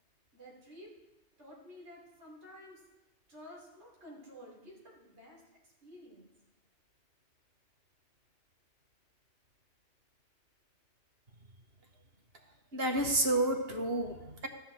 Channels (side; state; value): left; late; 2.9 ms